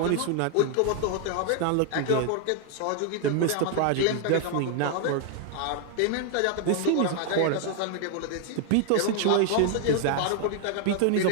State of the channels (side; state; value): both; different; correlation 0.00